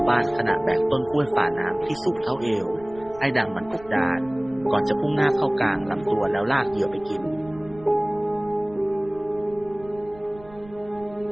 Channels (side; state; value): right; noise; rumble, 21 dB below the sound